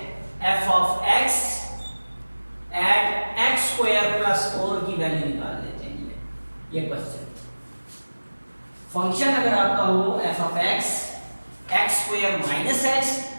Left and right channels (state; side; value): inverted; both; correlation -1.00